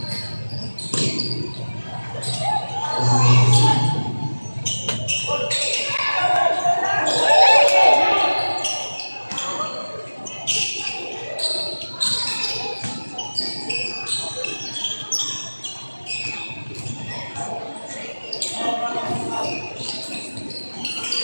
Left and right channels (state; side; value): inverted; both; correlation -1.00